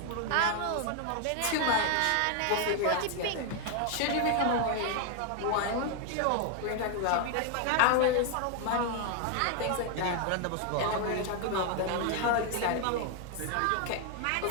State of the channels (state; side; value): different; both; correlation 0.01